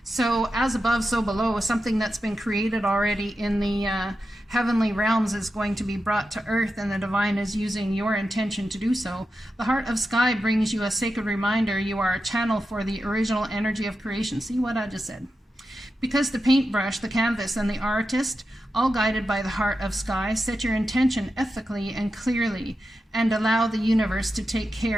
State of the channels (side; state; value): both; normal; correlation 0.89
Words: So as above, so below, something that's been created already in the heavenly realms is going to be brought to earth, and the divine is using your intention to do so. The Heart of Sky brings you a sacred reminder you are a channel for the original energy of creation. See what I just said? Because the paintbrush, the canvas, and the artist, all guided by the Heart of Sky, set your intention ethically and clearly and allow the universe to take